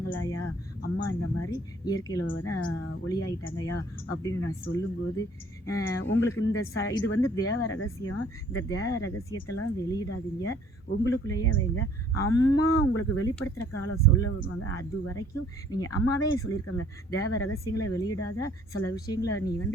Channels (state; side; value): normal; both; correlation 0.58